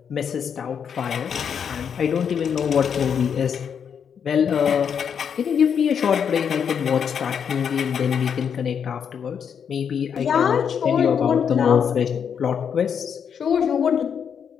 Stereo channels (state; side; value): quieter; right; 7.5 dB